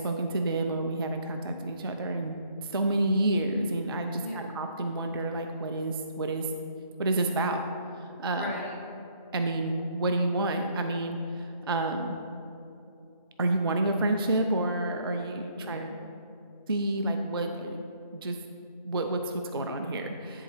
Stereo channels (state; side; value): inverted; both; correlation -0.64